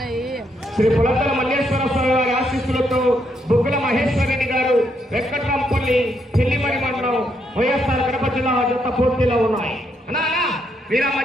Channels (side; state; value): both; normal; correlation 0.76